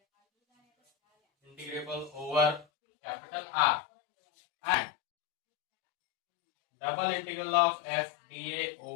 over capital R, and double integral of F dA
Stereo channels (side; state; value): right; drops out; at 2.7 s